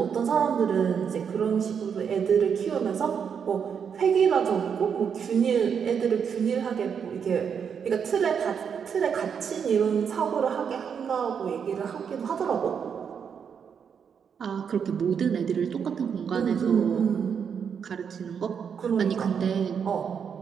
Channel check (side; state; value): left; quieter; 7.1 dB